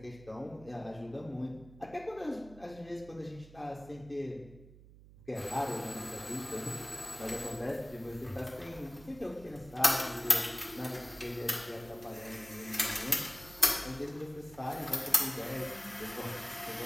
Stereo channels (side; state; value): right; noise; hum, 19 dB below the sound